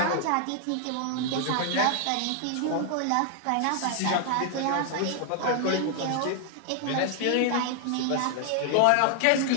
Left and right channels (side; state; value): both; different; correlation 0.00